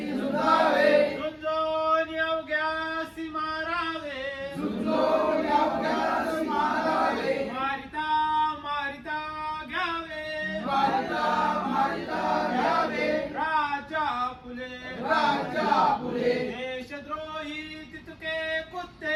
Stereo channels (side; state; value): both; identical; correlation 1.00